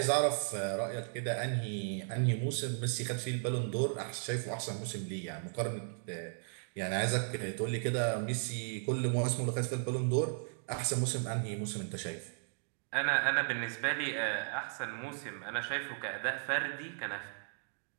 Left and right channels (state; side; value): silent; left; digital silence